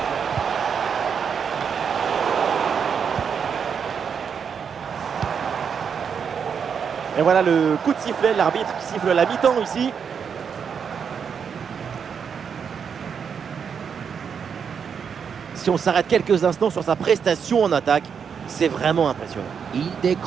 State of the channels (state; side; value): quieter; left; 6.9 dB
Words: Et voilà le coup de sifflet, l'arbitre qui siffle la mi-temps ici. Si on s'arrête quelques instants sur sa prestation en attaque, c'est vraiment impressionnant. Il